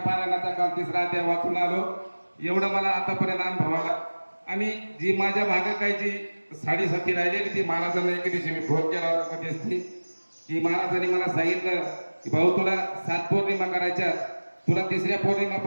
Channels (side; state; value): both; inverted; correlation -1.00